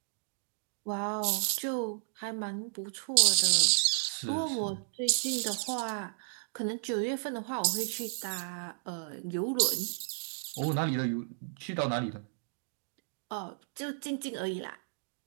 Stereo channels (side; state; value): left; silent; digital silence